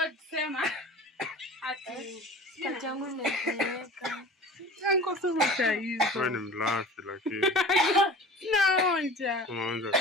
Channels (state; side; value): normal; both; correlation 0.40